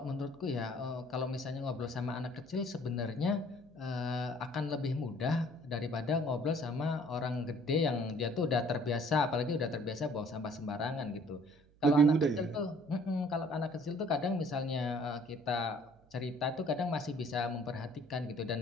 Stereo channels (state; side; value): noise; right; hum, 29 dB below the sound